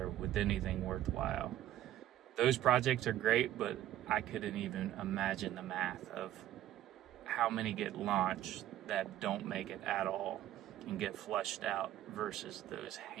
with anything worthwhile. Those projects are great, but I couldn't even imagine the math of how many get launched that don't make it at all and get flushed out versus those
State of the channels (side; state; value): left; quieter; 13.1 dB